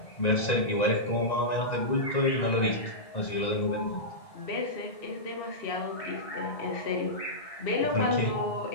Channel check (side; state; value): right; late; 1.9 ms